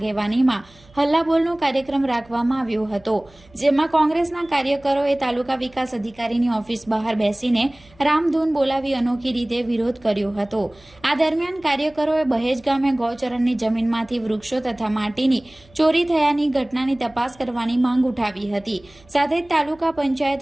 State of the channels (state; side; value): noise; right; hum, 27 dB below the sound